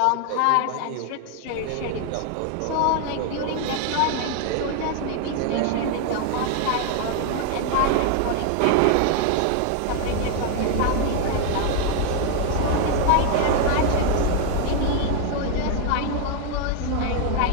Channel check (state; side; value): different; both; correlation 0.00